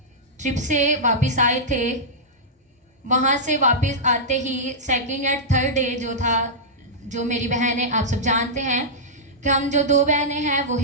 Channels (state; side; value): normal; both; correlation -0.11